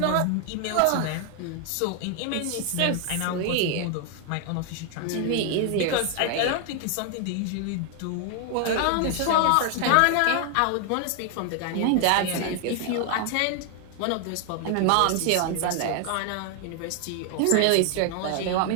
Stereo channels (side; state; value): both; different; correlation 0.00